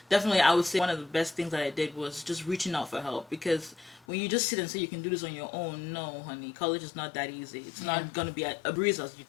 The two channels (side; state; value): right; drops out; at 4.0 s